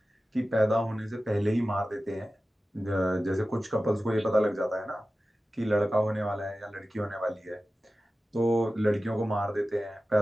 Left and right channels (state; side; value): normal; both; correlation 0.95